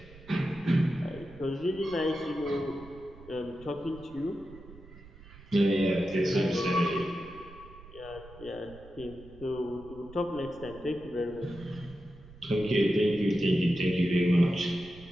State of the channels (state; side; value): noise; right; rumble, 20 dB below the sound